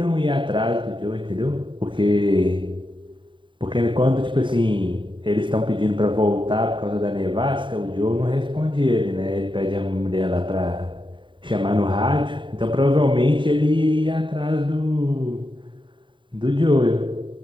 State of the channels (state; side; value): late; left; 0.23 ms